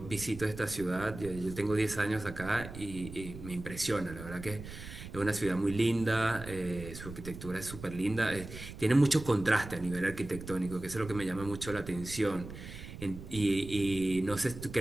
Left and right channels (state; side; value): noise; right; rumble, 12 dB below the sound